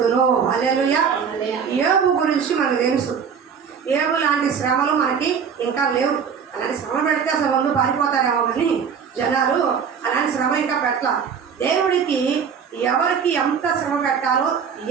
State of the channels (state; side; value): quieter; left; 6.8 dB